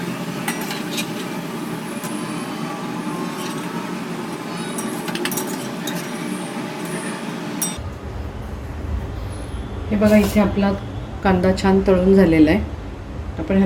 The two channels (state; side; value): identical; both; correlation 1.00